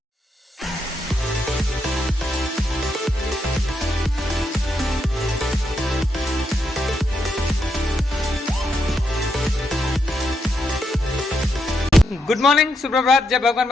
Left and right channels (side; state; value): both; normal; correlation 0.80